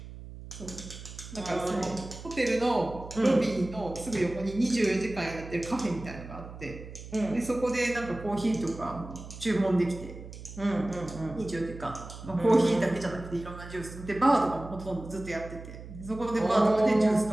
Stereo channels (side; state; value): right; noise; hum, 13 dB below the sound